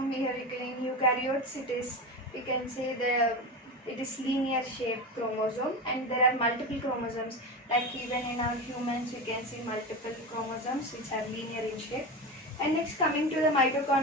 here in eukaryotes, we can see it is linear shaped chromosome, and there are multiple chromosomes. Like even in our humans, we can see multiple chromosomes which are linear in shape. And next, coming to the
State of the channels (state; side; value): normal; both; correlation 0.22